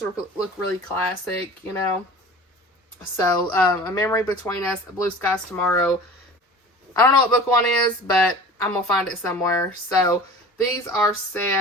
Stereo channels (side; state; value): both; normal; correlation 0.40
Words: look really classic, you know. So, A Memory Between Us, Blue Skies Tomorrow. I don't know what book 1 is, but I'm going to find it somewhere. So, these are